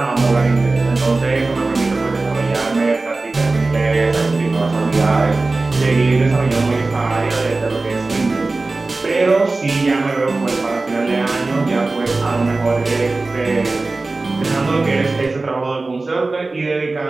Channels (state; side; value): quieter; left; 3.4 dB